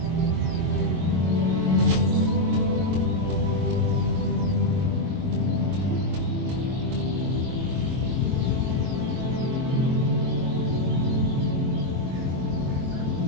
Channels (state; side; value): late; left; 23 ms